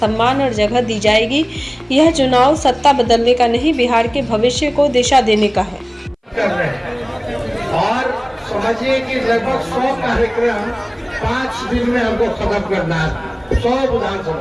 और जगह दी जाएगी। यह चुनाव सत्ता बदलने का नहीं, बिहार के भविष्य को दिशा देने का है। और समझिए कि लगभग 100 कार्यक्रम 5 दिन में हमको खत्म करना है, 100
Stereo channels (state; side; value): identical; both; correlation 1.00